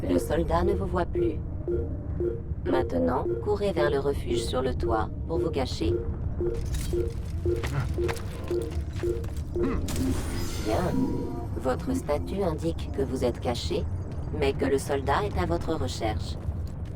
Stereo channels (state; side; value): identical; both; correlation 1.00